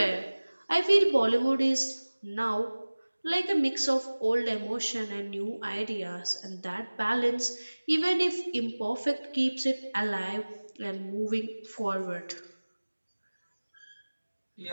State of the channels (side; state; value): both; inverted; correlation -1.00